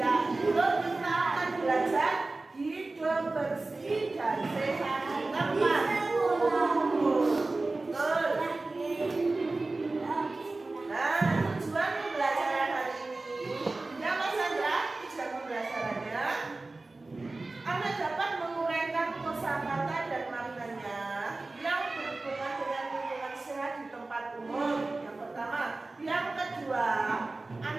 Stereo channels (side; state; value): left; quieter; 3.2 dB